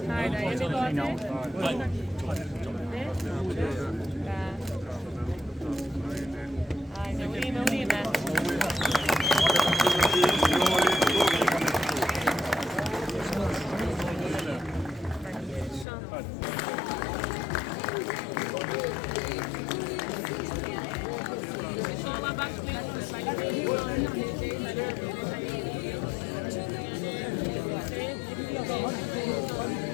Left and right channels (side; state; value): right; drops out; at 15.9 s